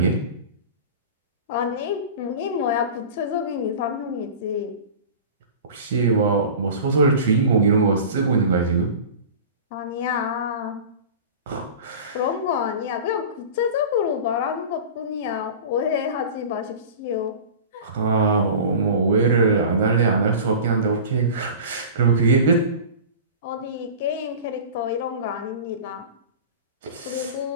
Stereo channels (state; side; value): inverted; both; correlation -0.35